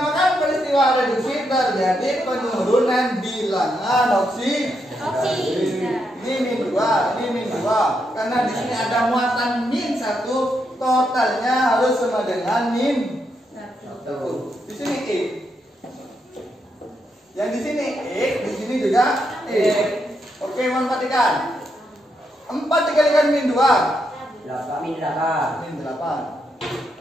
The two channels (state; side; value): normal; both; correlation 0.81